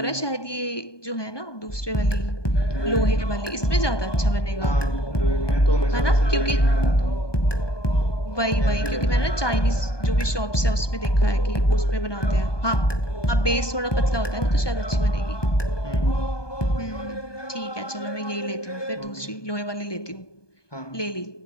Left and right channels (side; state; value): right; late; 1.2 ms